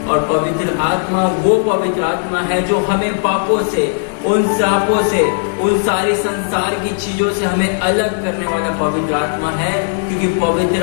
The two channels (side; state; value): right; silent; digital silence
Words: और पवित्र आत्मा वो पवित्र आत्मा है जो हमें पापों से, उन श्रापों से, उन सारी संसार की चीजों से हमें अलग करने वाला पवित्र आत्मा है, क्योंकि